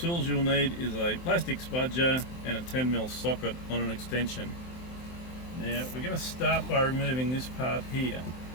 you'll need is a plastic spudger and a 10mm socket on an extension. Now we're going to start by removing this part here.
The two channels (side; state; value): right; late; 23 ms